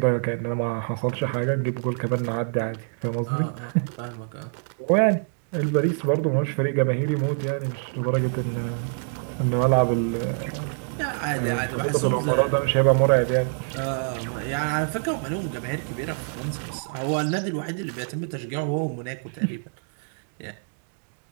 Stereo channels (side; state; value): left; silent; 61 dB below the other